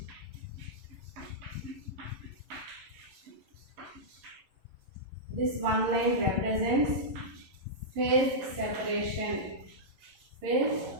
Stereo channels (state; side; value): late; left; 11 ms